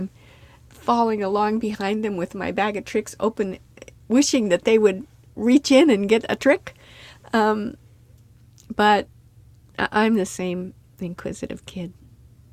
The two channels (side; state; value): both; identical; correlation 1.00